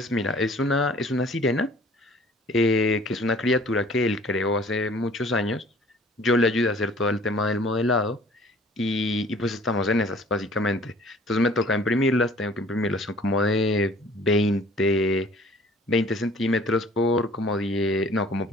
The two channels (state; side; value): normal; both; correlation 0.52